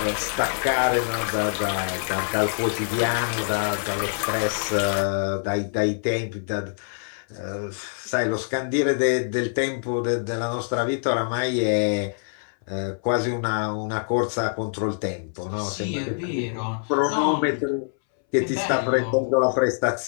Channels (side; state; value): right; silent; 62 dB below the other